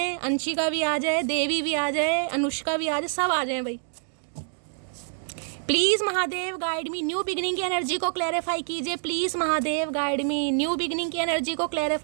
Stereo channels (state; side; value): silent; left; digital silence